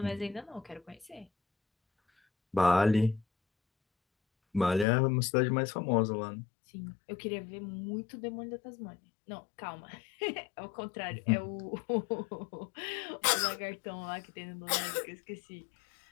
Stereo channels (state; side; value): drops out; right; at 4.9 s